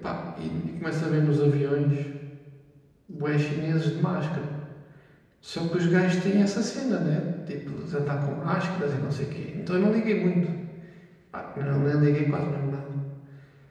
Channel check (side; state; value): both; identical; correlation 1.00